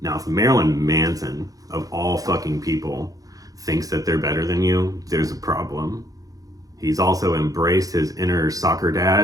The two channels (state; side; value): late; left; 0.17 ms